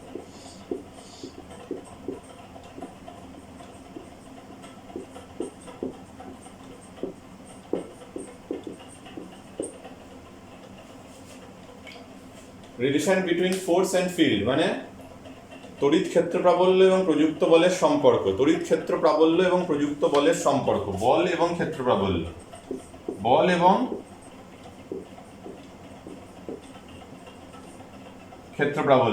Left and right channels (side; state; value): both; identical; correlation 1.00